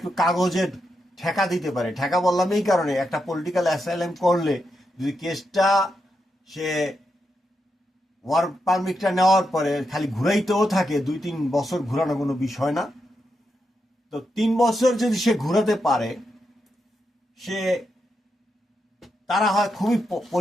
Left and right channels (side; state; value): both; normal; correlation 0.85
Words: কাগজের ঠেকা দিতে পারে, ঠেকা বললাম এই কারণে, একটা পলিটিক্যাল অ্যাসাইলাম করলে যদি কেসটা সে ওয়ার্ক পারমিটটা নেওয়ার পরে খালি ঘুরাইতেও থাকে, 2-3 বছর ঘুরানো কোনো বিষয় না, তো 3 বছর যদি সে ঘুরাতে পারে, সে তারা হয় খুবই